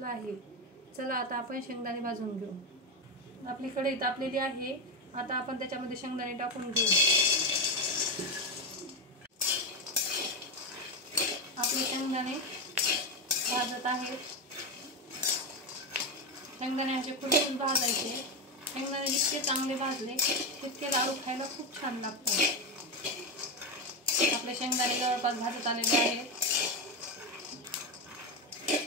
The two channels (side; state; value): both; normal; correlation 0.11